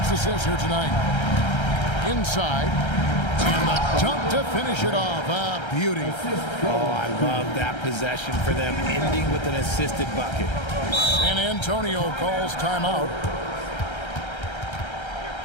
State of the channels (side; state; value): right; late; 1.3 ms